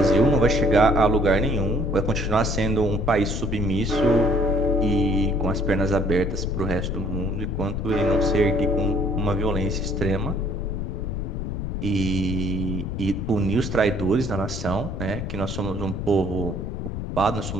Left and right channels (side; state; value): left; noise; rumble, 5 dB below the sound